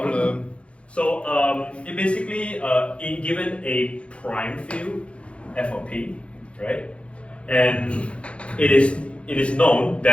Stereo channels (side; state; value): right; late; 0.061 ms